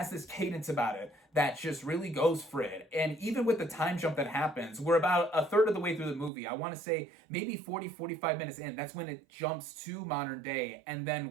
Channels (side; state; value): left; drops out; at 6.3 s